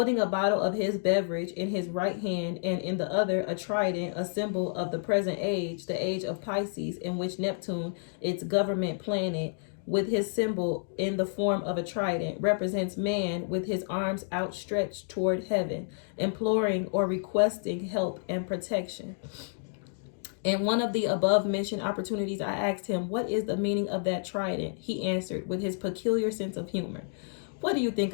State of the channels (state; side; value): silent; right; digital silence